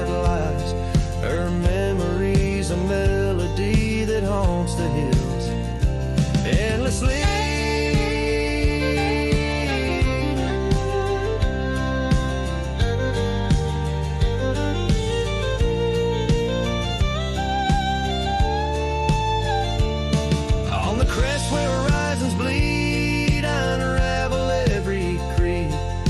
lies. Her memory's a melody that haunts the hills endlessly. On the crest where horizons bleed, I unravel every creed.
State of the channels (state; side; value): identical; both; correlation 1.00